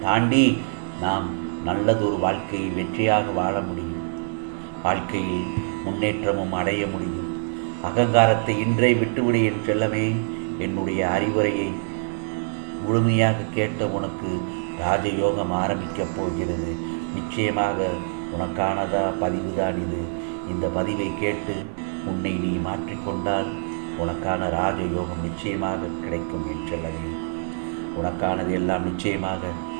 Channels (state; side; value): silent; left; digital silence